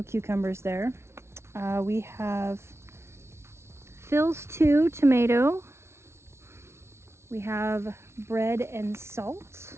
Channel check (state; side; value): late; left; 0.13 ms